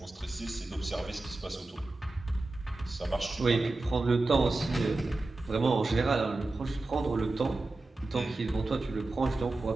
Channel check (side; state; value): left; quieter; 3.1 dB